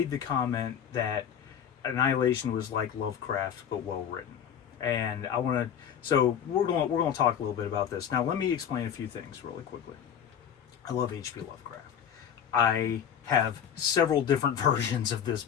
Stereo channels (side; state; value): right; quieter; 8.5 dB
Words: the comment that Annihilation was like Lovecraft but well written. And I want to, so we're going to talk a little bit about this. Now, let me explain a few things really quickly. I love H.P. Lovecraft. I have several different versions of this